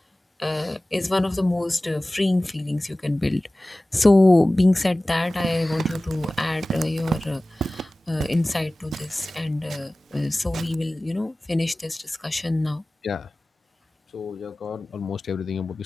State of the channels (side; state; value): both; normal; correlation 0.98